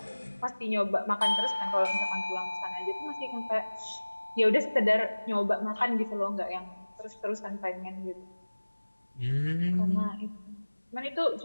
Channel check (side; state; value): both; inverted; correlation -1.00